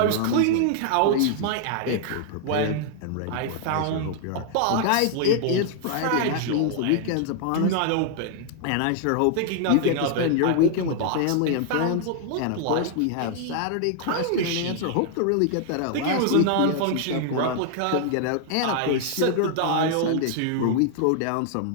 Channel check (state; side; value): different; both; correlation 0.00